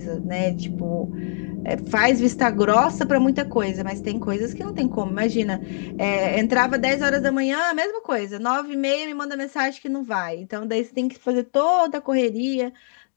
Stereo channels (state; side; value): silent; right; digital silence